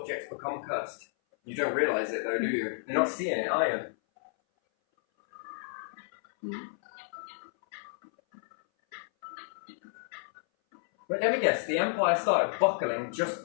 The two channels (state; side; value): silent; right; 57 dB below the other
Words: become cursed. You don't realise it though, do you? You're not seeing it, are you? But let me guess, the empire started buckling just